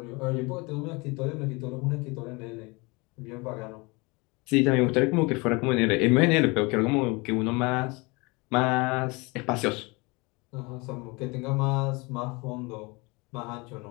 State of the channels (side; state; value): right; quieter; 26.8 dB